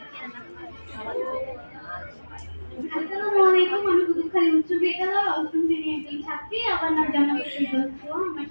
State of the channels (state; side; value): inverted; both; correlation -1.00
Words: আসসালামু আলাইকুম। আমি কোতোয়ালি উচ্চ বিদ্যালয় অষ্টম শ্রেণীর একজন ছাত্রী। আমার নাম জান্নাতুল দোস্ত। আমার